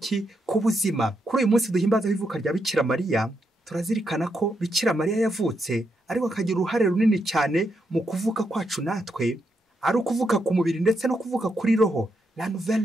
ku buzima. Kuri uyu munsi duhimbaza ivuka rya Bikira Mariya, turazirikana ko Bikira Mariya yavutse ariko akagira uruhare runini cyane mu kuvuka kwacu natwe, ari ukuvuka ku mubiri ndetse no kuvuka kuri roho, la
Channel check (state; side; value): normal; both; correlation 0.81